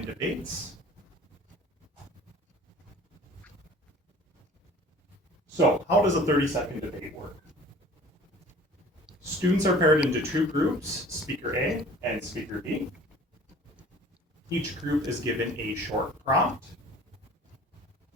debates. So, how does a 30-second debate work? Students are paired into two groups, Speaker A and Speaker B. Each group is given a short prompt,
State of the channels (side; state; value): both; normal; correlation 0.47